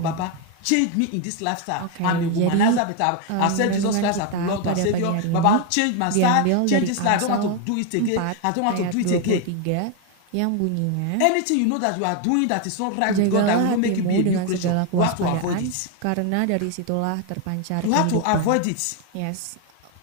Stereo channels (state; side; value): different; both; correlation 0.01